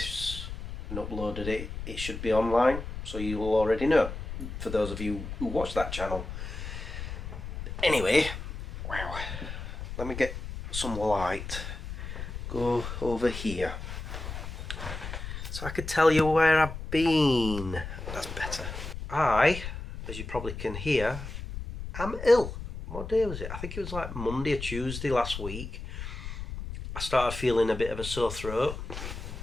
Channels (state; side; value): noise; left; rumble, 8 dB below the sound